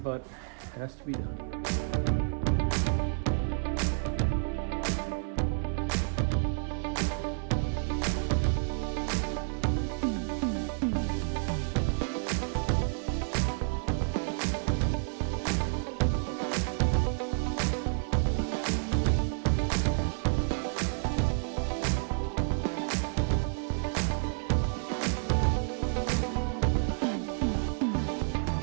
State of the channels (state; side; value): silent; left; 56 dB below the other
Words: it has to be done.